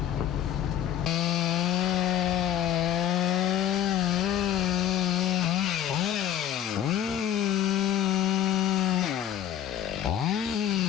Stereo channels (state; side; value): quieter; right; 10.7 dB